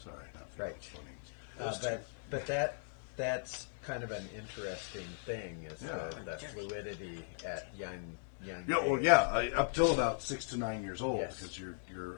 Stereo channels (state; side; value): silent; right; digital silence